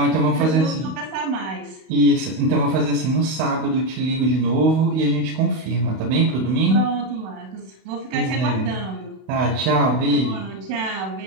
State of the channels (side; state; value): left; late; 31 ms